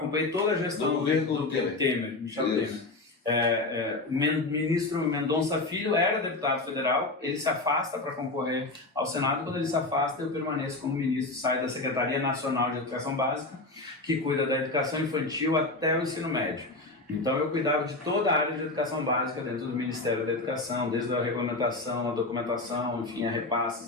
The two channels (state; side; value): quieter; right; 3.1 dB